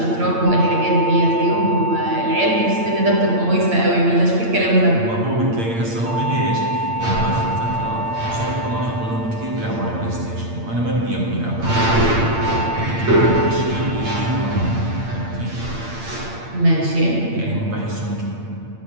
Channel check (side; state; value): left; late; 8.7 ms